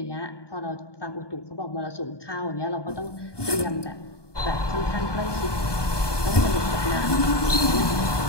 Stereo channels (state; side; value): late; right; 1.2 ms